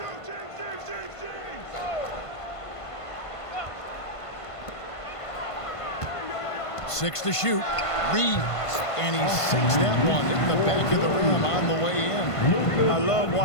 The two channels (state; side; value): late; right; 1.5 ms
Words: Six to shoot. Reeves. And he sinks that one in the back of the rim on the way in. I love